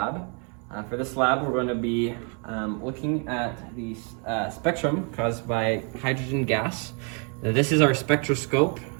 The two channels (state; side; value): quieter; left; 38.0 dB